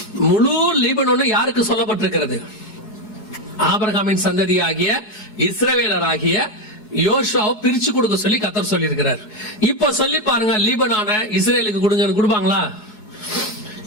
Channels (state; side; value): late; right; 4.7 ms